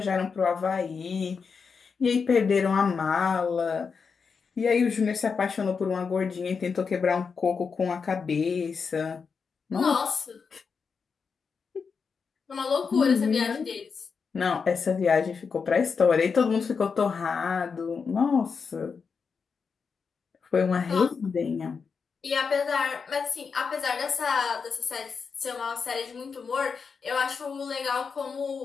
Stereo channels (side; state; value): right; quieter; 5.6 dB